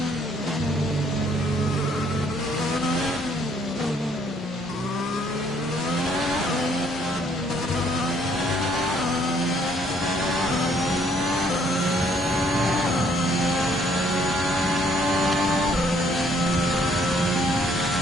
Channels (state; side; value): normal; both; correlation 0.65